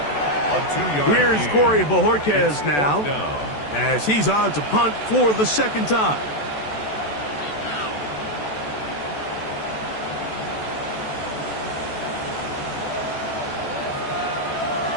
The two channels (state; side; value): late; right; 14 ms